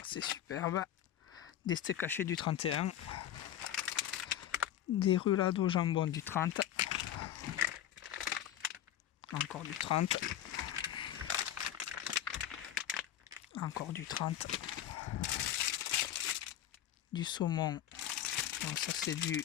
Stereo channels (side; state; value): right; quieter; 11.2 dB